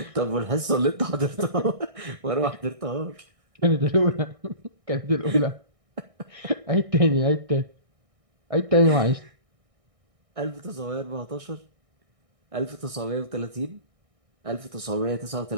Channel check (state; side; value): late; left; 1.6 ms